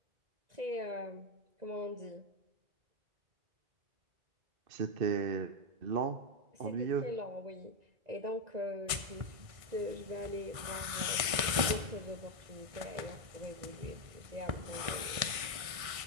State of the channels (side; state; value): left; late; 1.6 ms